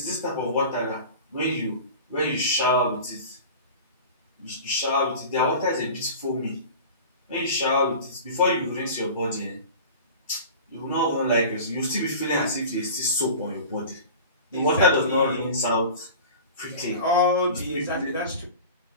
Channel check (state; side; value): inverted; both; correlation -0.37